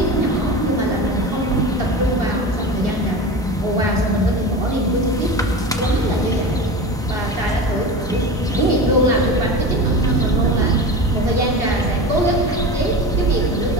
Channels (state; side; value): normal; both; correlation 0.29